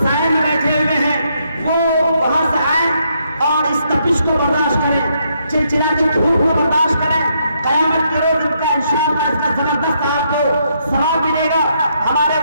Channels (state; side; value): inverted; both; correlation -0.75